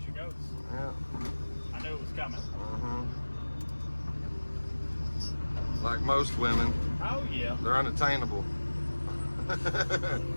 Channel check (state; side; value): inverted; both; correlation -1.00